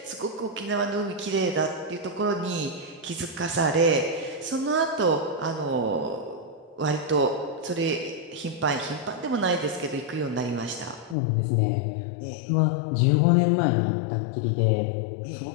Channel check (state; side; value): drops out; right; at 11.2 s